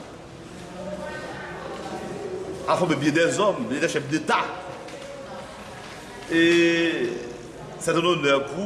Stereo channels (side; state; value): both; identical; correlation 1.00